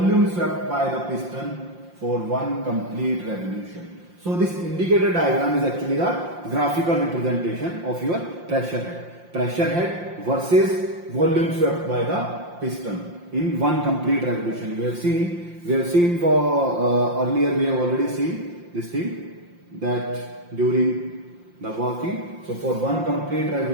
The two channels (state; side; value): late; left; 5.7 ms